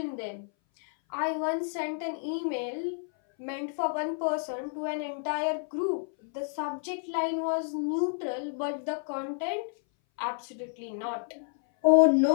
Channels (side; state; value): right; silent; 58 dB below the other